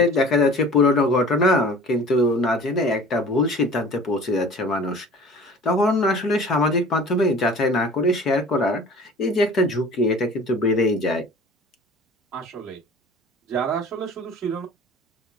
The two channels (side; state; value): both; normal; correlation 0.44